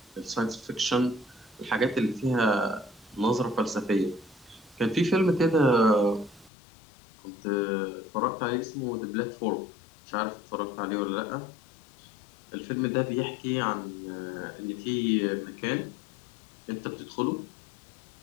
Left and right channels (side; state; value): right; drops out; at 6.5 s